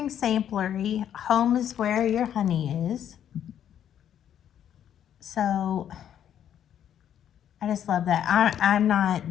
Samplery. Home is where your honey is. So I just love that. I'm not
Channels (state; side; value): quieter; right; 9.9 dB